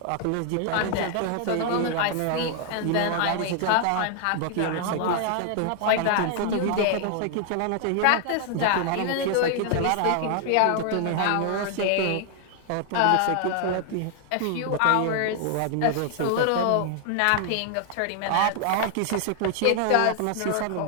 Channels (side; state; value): both; different; correlation 0.00